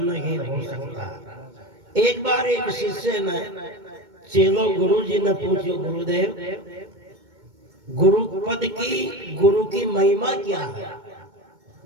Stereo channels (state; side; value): late; left; 2.2 ms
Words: हो सकता। एक बार एक शिष्य ने चेलो गुरु जी ने पूछो, गुरुदेव गुरु की महिमा क्या है,